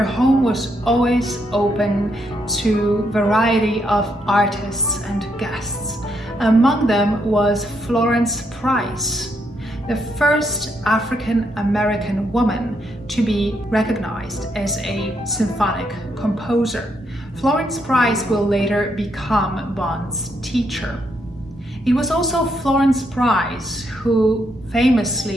home was always open to a variety of artists and guests. Among them was Florence Price, the first African American woman to be recognized as a symphonic composer. Florence Price will later become Bonds' teacher. It was also Florence Price who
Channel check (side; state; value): both; normal; correlation 0.77